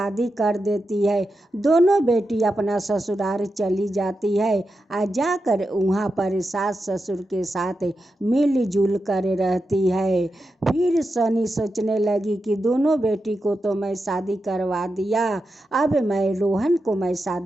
कर देती है। दोनों बेटी अपना ससुराल चली जाती है और जाकर वहाँ पर सास ससुर के साथ मिलजुल कर रहती है। फिर सनी सोचने लगी कि दोनों बेटी को तो मैं शादी करवा दिया, अब मैं रोहन को मैं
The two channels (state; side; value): normal; both; correlation 0.89